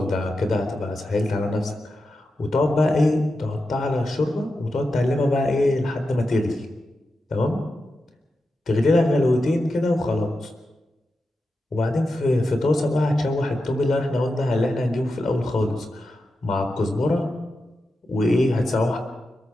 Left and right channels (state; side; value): normal; both; correlation 0.89